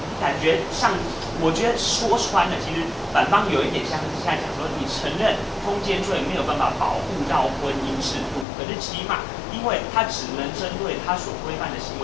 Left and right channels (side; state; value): right; drops out; at 8.5 s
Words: 感觉上，我觉得说穿了，其实反方有一点像是现在讲说，你承认通奸罪没有办法保护到婚姻制度，可是起码因为它只能针对它所规范的行